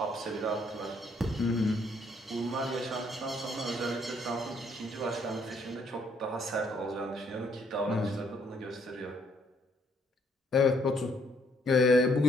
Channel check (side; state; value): both; normal; correlation 0.68